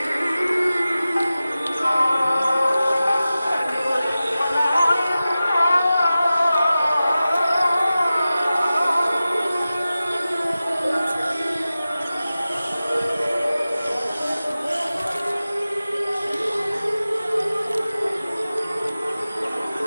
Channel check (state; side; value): inverted; both; correlation -0.95